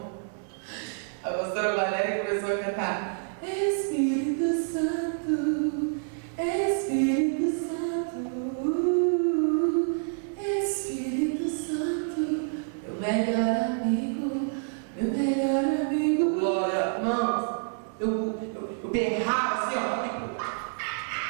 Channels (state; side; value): silent; left; digital silence